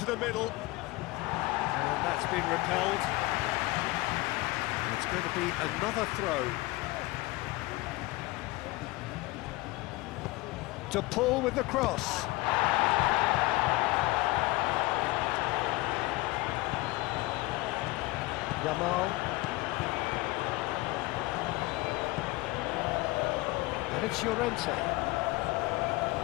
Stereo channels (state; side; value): quieter; right; 21.1 dB